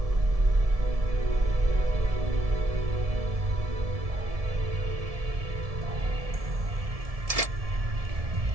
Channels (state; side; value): late; left; 1.7 ms